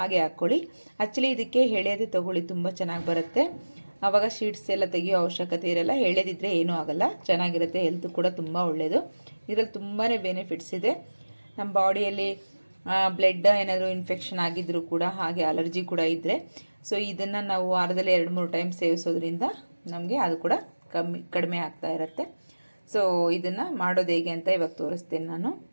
ಹಾಕ್ಕೊಳ್ಳಿ. ಆ್ಯಕ್ಚುಲಿ ಇದಕ್ಕೆ ಎಳೆಯದೇ ತೊಗೊಳ್ಳಿ, ತುಂಬ ಚೆನ್ನಾಗಿ ಬರುತ್ತೆ. ಆವಾಗ ಶೀಟ್ಸ್ ಎಲ್ಲ ತೆಗಿಯೋ ಅವಶ್ಯಕತೆ ಇರಲ್ಲ. ಎಳೆದಿದ್ದರೆ ಏನೂ ಆಗೋಲ್ಲ, ಚೆನ್ನಾಗಿರುತ್ತೆ. ಹೆಲ್ತ್ ಕೂಡ ತುಂಬ ಒಳ್ಳೆಯದು. ಇದರಲ್ಲಿ ತುಂಬಾ ಬೆನಿಫಿಟ್ಸ್ ಇದೆ. ನಮ್ಮ ಬಾಡಿಯಲ್ಲಿ ಬ್ಲಡ್ ಏನಾದರೂ ಇನ್ಫೆಕ್ಷನ್ ಆಗಿದ್ದರೂ ಕೂಡ, ಹಾಗೆ ಅಲರ್ಜಿ ಕೂಡ ಇದ್ದರೆ, ಸೊ ಇದನ್ನು ನಾವು ವಾರದಲ್ಲಿ 2-3 ಟೈಮ್ ಸೇವಿಸೋದ್ರಿಂದ ನಮಗೆ ಅದು ಕೂಡ ಕಡಿಮೆ ಆಗ್ತಾ ಇರುತ್ತೆ. ಸೊ ಇದನ್ನು ಮಾಡೋದು ಹೇಗೆ ಅಂತ ಇವಾಗ ತೋರಿಸ್ತೇನೆ ನಾನು.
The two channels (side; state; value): both; inverted; correlation -1.00